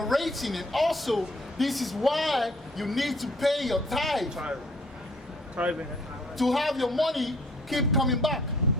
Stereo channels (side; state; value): both; normal; correlation 0.59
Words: and also this is why you need to pay your tithe. Tithing. To have your money keep coming back.